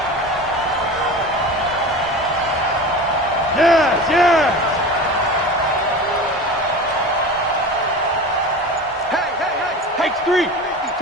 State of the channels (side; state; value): both; normal; correlation 0.32